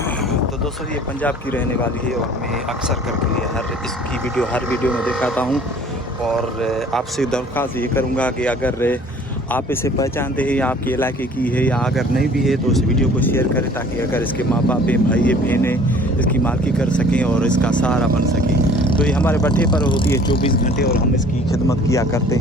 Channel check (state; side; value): normal; both; correlation 0.51